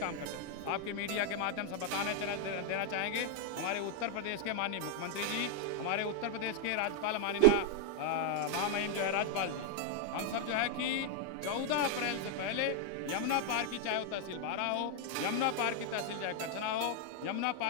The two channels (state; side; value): different; both; correlation 0.00